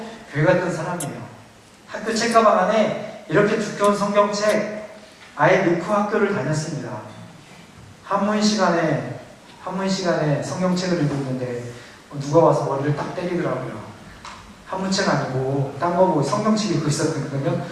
교회 갔던 사람이에요. 학교 책가방 안에 이렇게 두꺼운 성경책 아예 넣고 학교를 다녔습니다. 한문 시간에 성경책을 읽고 있는데 누가 와서 머리를 딱 때리더라고요. 한문책 아니고 딴 거 보고 성경책 읽고 있었거든요.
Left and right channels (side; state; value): both; identical; correlation 1.00